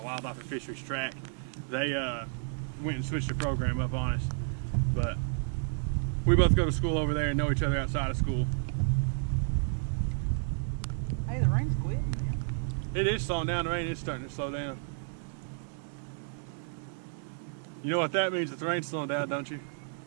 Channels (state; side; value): silent; left; digital silence